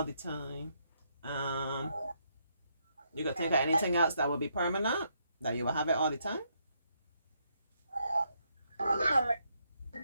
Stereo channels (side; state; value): both; inverted; correlation -0.76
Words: the time. Um, you can think of anything else that will be permanent, that you will have it all the time.